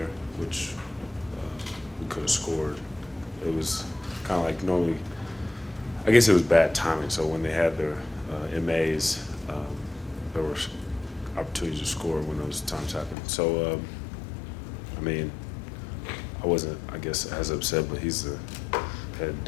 which we could have scored. It was kind of like normally, I guess it was bad timing. So when they had their MAs, there were opportunities to score when those times happened. So, I mean, I wasn't, I guess, as upset, but he's the head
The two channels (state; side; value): drops out; right; at 13.2 s